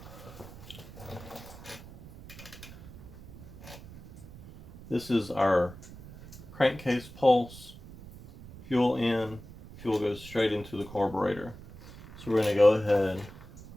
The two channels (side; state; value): right; noise; rumble, 16 dB below the sound